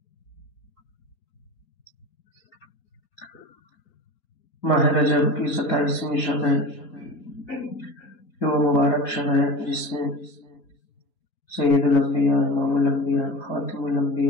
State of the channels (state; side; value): late; right; 4.4 ms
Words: ماہ رجب کی 27ویں شب ہے، یہ وہ مبارک شب ہے جس میں سید الانبیاء، امام الانبیاء، خاتم